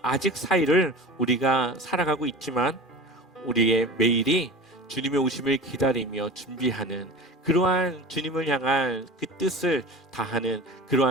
아직 사이를 우리가 살아가고 있지만 우리의 매일이 주님의 오심을 기다리며 준비하는 그러한 주님을 향한 그 뜻을 다하는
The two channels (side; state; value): both; normal; correlation 0.33